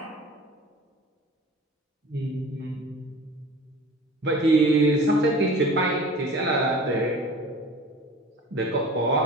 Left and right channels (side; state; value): both; normal; correlation 0.41